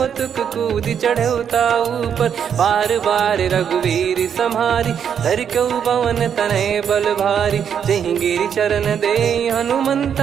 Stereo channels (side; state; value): left; quieter; 8.1 dB